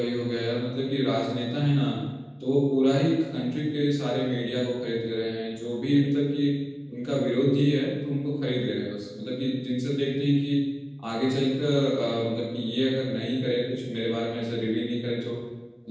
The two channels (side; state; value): both; identical; correlation 1.00